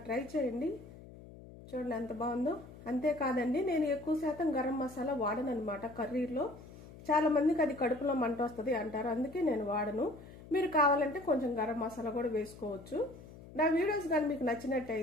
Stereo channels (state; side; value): noise; left; hum, 18 dB below the sound